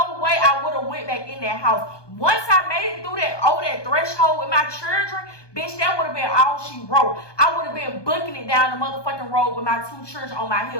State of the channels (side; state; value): right; late; 1.2 ms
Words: way I would have went back in that house. Once I made it through over that threshold with my children, bitch, that would have been all she wrote. I would have been booking it down the motherfucking road with my two children on my